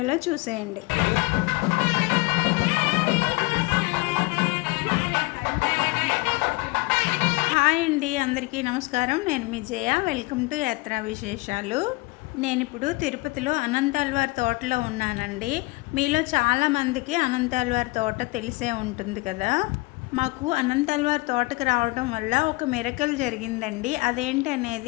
చూసేయండి. హాయ్ అండి, అందరికీ నమస్కారం. నేను మీ జయ. వెల్కమ్ టు యాత్రా విశేషాలు. నేను ఇప్పుడు తిరుపతిలో అనంతాళ్వారి తోటలో ఉన్నానండి. మీలో చాలామందికి అనంతాళ్వారి తోట తెలిసే ఉంటుంది కదా. మాకు అనంతాళ్వారి తోటకు రావడం వల్ల ఒక మిరకల్ జరిగిందండి. అదేంటి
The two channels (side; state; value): right; quieter; 24.2 dB